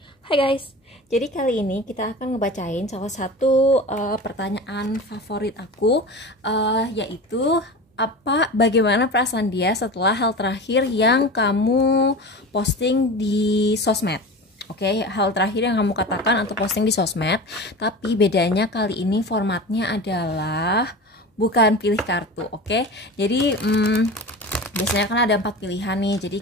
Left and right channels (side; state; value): both; normal; correlation 0.31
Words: Hai guys, jadi kali ini kita akan ngebacain salah satu pertanyaan favorit aku, yaitu bagaimana perasaan dia setelah hal terakhir yang kamu posting di sosmed. Oke, hal terakhir yang kamu katakan atau posting di sosmed. Tapi bedanya kali ini formatnya adalah bukan pilih kartu. Oke, jadi biasanya kan ada 4 pilihan nih. Jadi